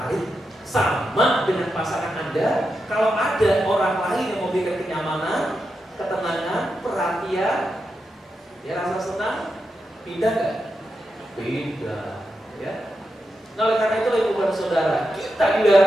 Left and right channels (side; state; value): both; normal; correlation 0.87